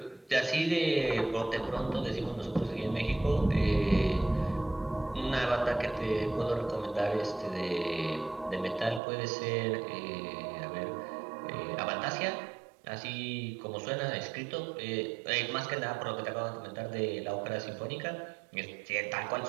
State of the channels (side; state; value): left; drops out; at 9.0 s